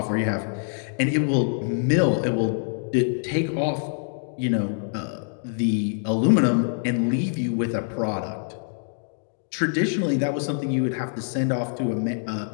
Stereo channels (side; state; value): right; silent; digital silence